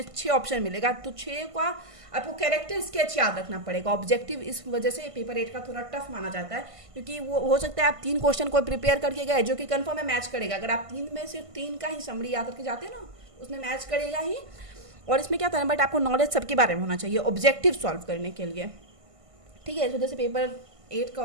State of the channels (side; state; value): left; late; 1.5 ms